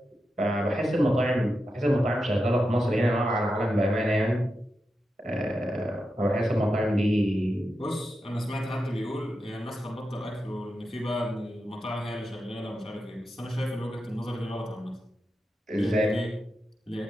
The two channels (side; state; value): both; normal; correlation 0.89